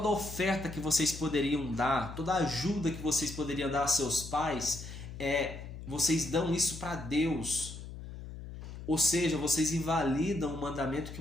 oferta que vocês poderiam dar, toda ajuda que vocês poderiam dar a seus pais, vocês dão isso para Deus. Ou seja, vocês invalidam o mandamento que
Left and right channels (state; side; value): noise; left; hum, 11 dB below the sound